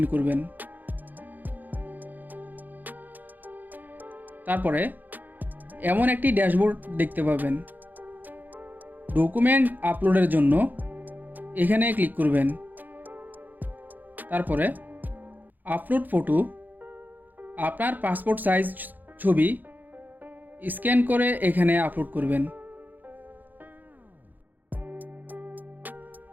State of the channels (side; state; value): left; late; 0.085 ms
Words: করবেন। তারপরে এমন একটি ড্যাশবোর্ড দেখতে পাবেন। ডকুমেন্ট আপলোডের জন্য এখানে ক্লিক করবেন। তারপরে আপলোড ফটো, আপনার পাসপোর্ট সাইজ ছবি স্ক্যান করে এখানে আপলোড করবেন।